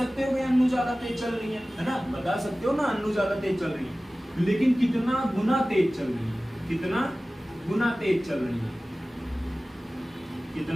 हो कि अन्नू ज्यादा तेज चल रही है ना। बता सकते हो ना अन्नू ज्यादा तेज चल रही है, लेकिन कितना गुना तेज चल रही है? कितना गुना तेज चल रही है?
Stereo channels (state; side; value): normal; both; correlation 0.97